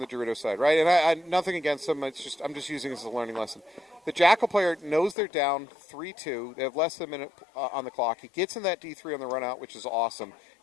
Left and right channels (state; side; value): drops out; right; at 5.2 s